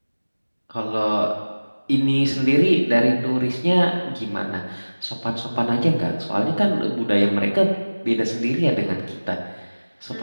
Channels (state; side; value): inverted; both; correlation -1.00